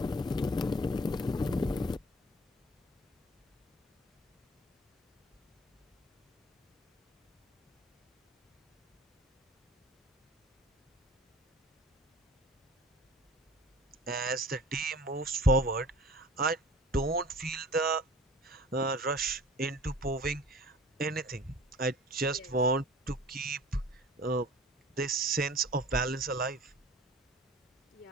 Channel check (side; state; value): both; normal; correlation 0.45